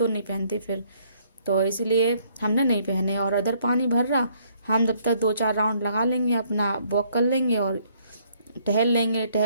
नहीं पहनते फिर। तो इसलिए हमने नहीं पहने। और अदर पानी भर रहा, हम जब तक 2-4 राउंड लगा लेंगे, अपना वॉक कर लेंगे और टहल लेंगे।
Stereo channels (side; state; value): both; inverted; correlation -0.66